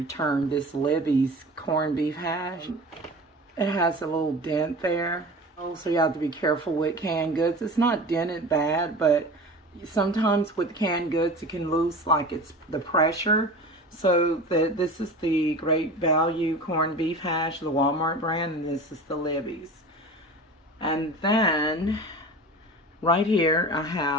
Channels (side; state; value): both; normal; correlation 0.35